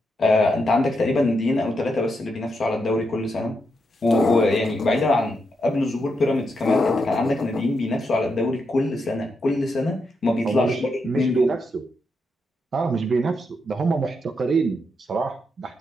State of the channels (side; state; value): both; normal; correlation 0.82